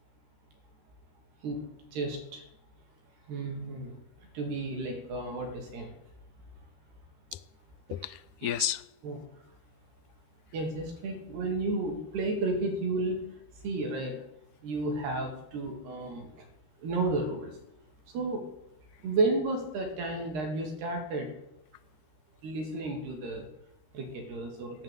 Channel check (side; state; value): left; late; 13 ms